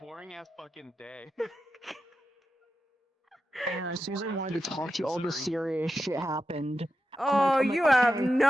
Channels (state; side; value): normal; both; correlation 0.89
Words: ass fucking day. And Susan wanted to talk to you. All the serious shit happened. Oh, I'm like, you okay. have You no